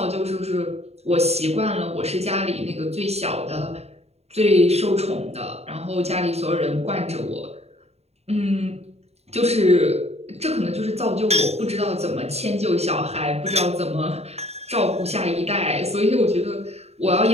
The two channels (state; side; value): late; left; 0.30 ms